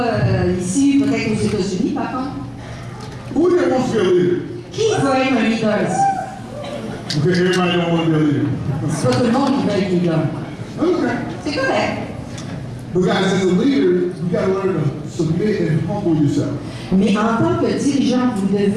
ici, peut-être aux États-Unis par contre. Who here wants to be a leader? Qui veut être un leader ici? Okay, everybody don't want to be a leader. C'est pas tout le monde qui veut être leader. Okay. C'est correct. But guys, as a leader, you got to learn to submit and humble yourself. Mais en tant que dirigeant, vous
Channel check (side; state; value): both; identical; correlation 1.00